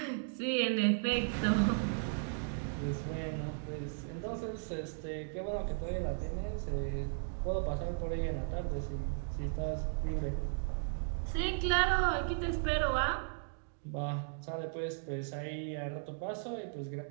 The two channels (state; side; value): silent; left; digital silence